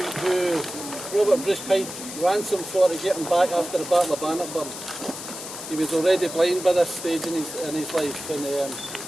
Robert Bruce paid ransom for to get him back after the Battle of Bannockburn. He was already blind by this stage in his life, and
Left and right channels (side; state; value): left; noise; hiss, 10 dB below the sound